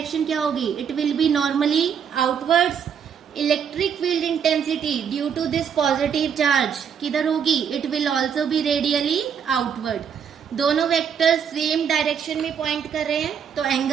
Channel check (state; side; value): quieter; left; 7.6 dB